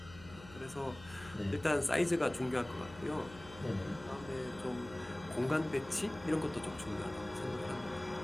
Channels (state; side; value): noise; left; hum, 18 dB below the sound